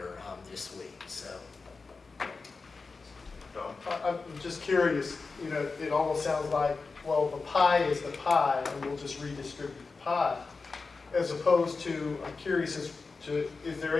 this week. So. I'm just curious, you know, it almost sounds like, well, the pie is the pie, and we'll just redistribute the pie. As opposed to, I'm curious as to, is there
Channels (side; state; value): right; quieter; 4.2 dB